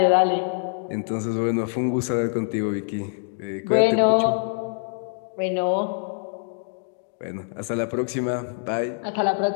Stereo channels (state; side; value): silent; right; digital silence